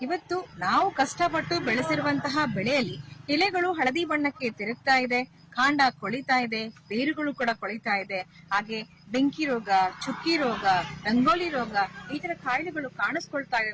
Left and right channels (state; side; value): identical; both; correlation 1.00